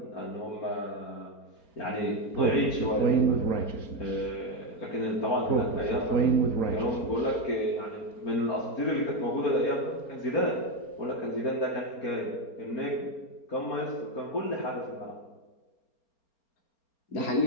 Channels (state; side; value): late; right; 4.4 ms